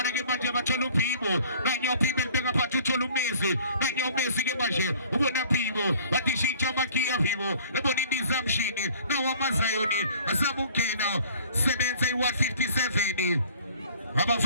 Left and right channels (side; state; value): both; inverted; correlation -0.51